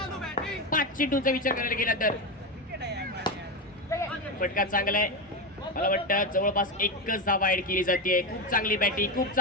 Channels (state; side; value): normal; both; correlation 0.14